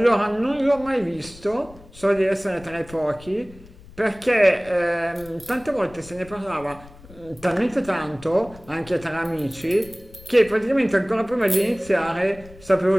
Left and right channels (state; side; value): noise; left; rumble, 21 dB below the sound